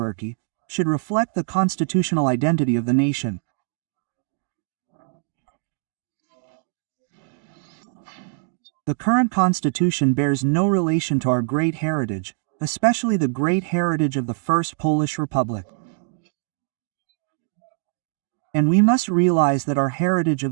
should reflect the constitutional identity of the nation. The current constitution bears no relation to our great heritage, especially the great heritage of the First Polish Republic. And we must realize that our heritage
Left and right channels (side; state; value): left; silent; digital silence